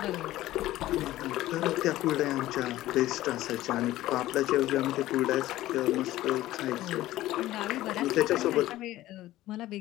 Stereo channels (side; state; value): right; quieter; 15.6 dB